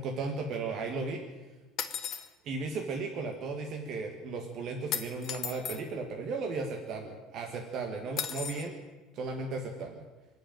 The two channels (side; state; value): both; normal; correlation 0.46